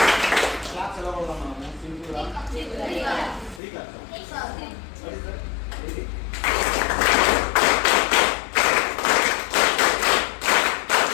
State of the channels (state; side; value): drops out; right; at 3.6 s